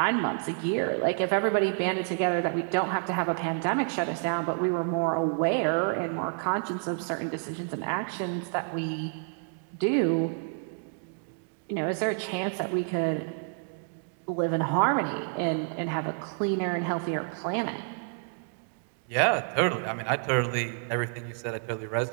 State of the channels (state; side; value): silent; left; 58 dB below the other